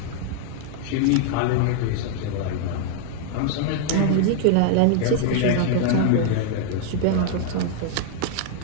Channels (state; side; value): different; both; correlation 0.00